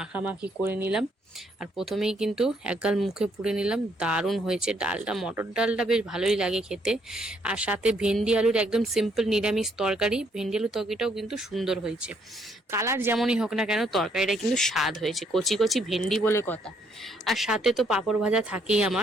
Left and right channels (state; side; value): normal; both; correlation 0.70